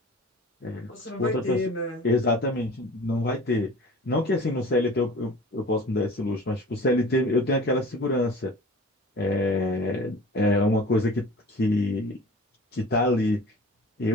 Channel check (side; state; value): both; normal; correlation 0.42